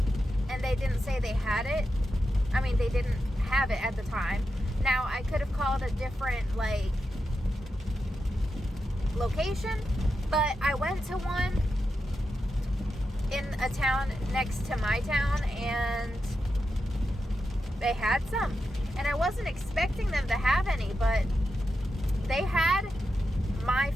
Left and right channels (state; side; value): normal; both; correlation 0.88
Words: and they didn't say they had it. I mean, they didn't have it at the time. Now, I could have called a different like location, but I went to one in a town next to my town and they had some, and I wasn't expecting them to have any, but they had my